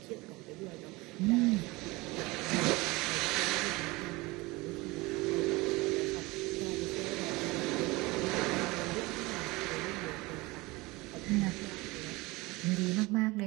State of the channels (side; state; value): left; quieter; 22.5 dB